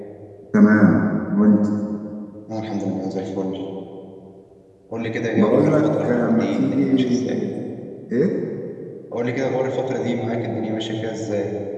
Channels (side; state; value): both; identical; correlation 1.00